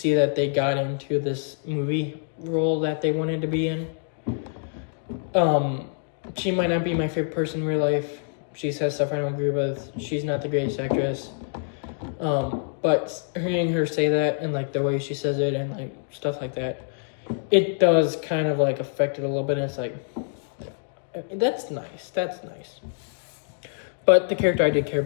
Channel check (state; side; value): silent; right; digital silence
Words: that they got into this movie role that they wanted to be in. She might not be my favorite person in real life. She says stuff I don't agree with. She's not the greatest actress. But hearing her say that and like the way she says it and like stuff like that, it does kind of like affect it a little bit. And it's like, that's nice. But the character I did care